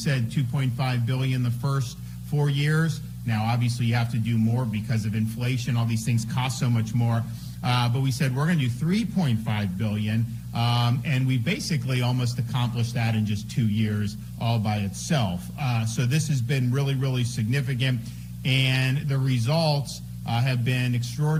$2.5 billion the first 4 years. Now, obviously, you have to do more because of inflation. All these things cost so much more. But we said we're going to do $3.5 billion. And we basically almost accomplished that in just 2 years all by itself. So this has been really, really significant. And the results have been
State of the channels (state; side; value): identical; both; correlation 1.00